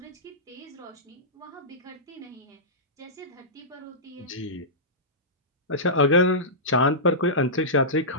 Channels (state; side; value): normal; both; correlation -0.17